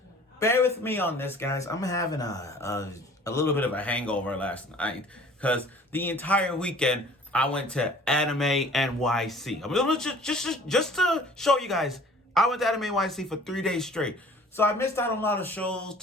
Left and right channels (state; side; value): normal; both; correlation 0.50